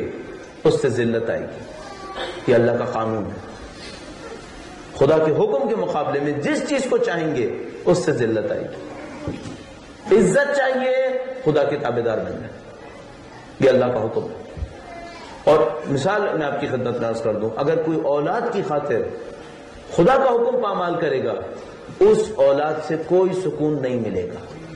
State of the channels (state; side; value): identical; both; correlation 1.00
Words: اس سے ذلت آئے گی. یہ اللہ کا قانون ہے. خدا کے حکم کے مقابلے میں جس چیز کو چاہیں گے اس سے ذلت آئے گی. عزت چاہیے خدا کے تابعدار بننا، یہ اللہ کا حکم ہے. اور مثال میں آپ کی خدمت میں عرض کر دوں، اگر کوئی اولاد کی خاطر خدا کا حکم پامال کرے گا اس اولاد سے کوئی سکون نہیں ملے گا.